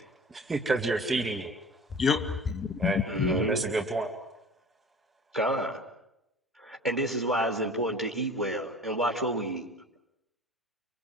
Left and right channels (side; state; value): both; normal; correlation 0.41